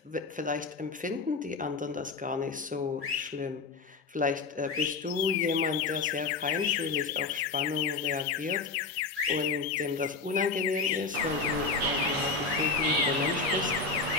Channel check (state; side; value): quieter; right; 4.4 dB